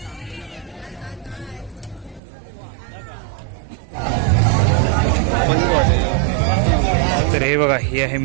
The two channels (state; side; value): drops out; left; at 2.2 s